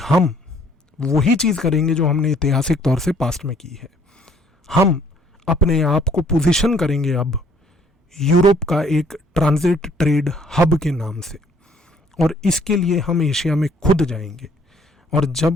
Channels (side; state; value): both; normal; correlation 0.61